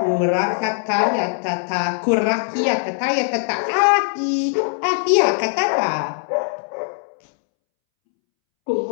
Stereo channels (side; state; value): right; silent; 65 dB below the other